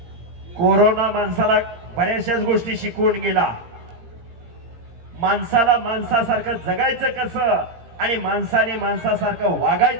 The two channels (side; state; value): left; late; 17 ms